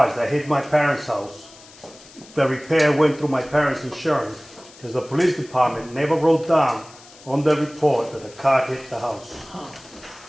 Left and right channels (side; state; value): left; noise; hiss, 22 dB below the sound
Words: that hit my parents' house, the repair went through my parents' insurance, because the police department never wrote down on the report that the car hit the house.